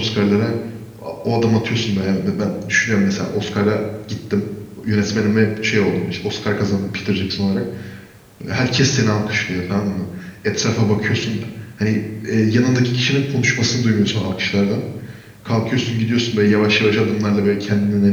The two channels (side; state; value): both; identical; correlation 1.00